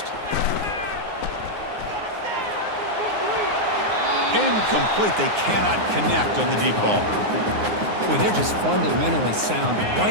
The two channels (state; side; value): late; left; 9.6 ms